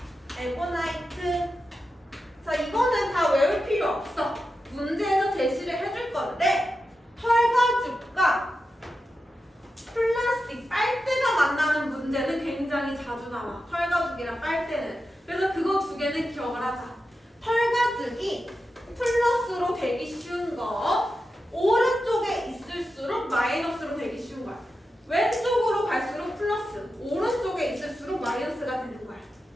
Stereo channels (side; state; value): both; normal; correlation 0.90